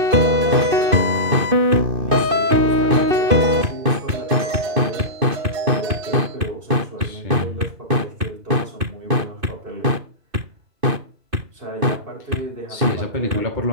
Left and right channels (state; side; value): late; left; 2.5 ms